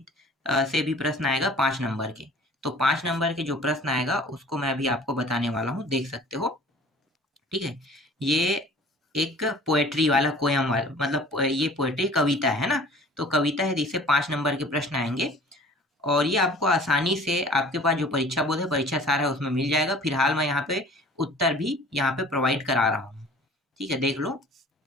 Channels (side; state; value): both; normal; correlation 0.48